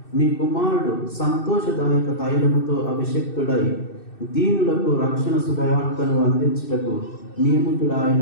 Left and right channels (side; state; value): right; late; 2.6 ms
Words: నీ కుమారుడు సంతోషదాయక తైలముతో అభిషక్తుడై దీనులకు రక్షణ శుభవార్తను అందించుటకు